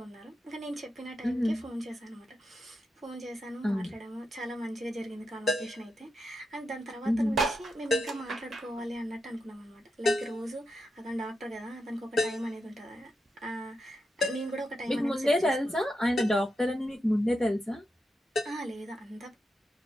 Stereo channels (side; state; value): both; normal; correlation 0.86